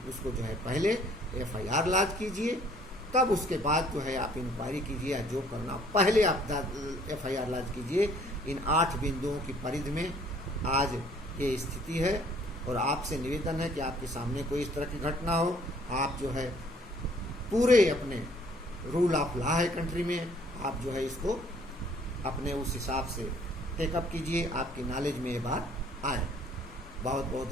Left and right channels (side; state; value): both; normal; correlation 0.59